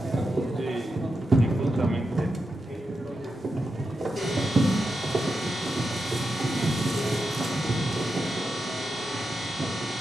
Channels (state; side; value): noise; right; rumble, 30 dB below the sound